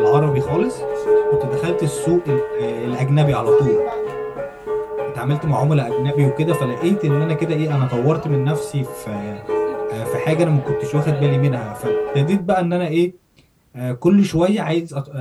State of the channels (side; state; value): both; identical; correlation 1.00